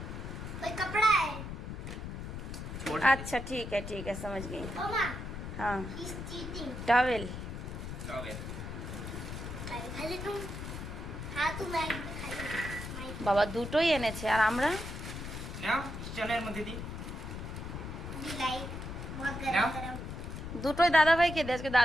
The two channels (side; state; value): left; noise; rumble, 7 dB below the sound